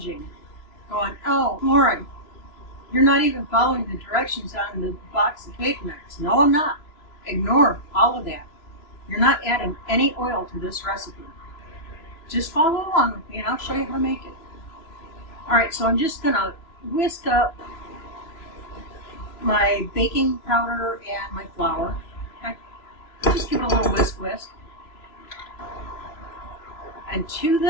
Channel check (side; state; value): right; late; 3.0 ms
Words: going, "Oh, Lauren, you're not even following the directions on the box of cake mix." No, I'm not. Ignore all of that. You're not adding any oil to this recipe. Just follow along with me and I'll show you how to make it. Alright, so I'm just going to whisk up my baking powder and my flour. Okay? Just give it a little whisk. And to